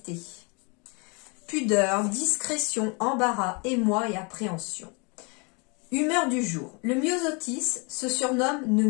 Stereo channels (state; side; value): quieter; right; 31.9 dB